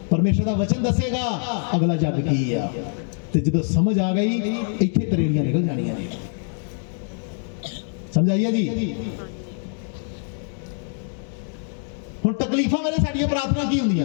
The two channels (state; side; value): silent; right; 62 dB below the other